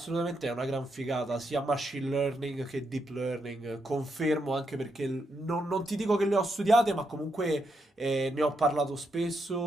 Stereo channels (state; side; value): normal; both; correlation 0.81